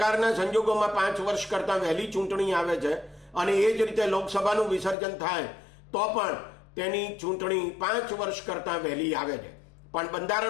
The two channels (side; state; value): right; drops out; at 5.0 s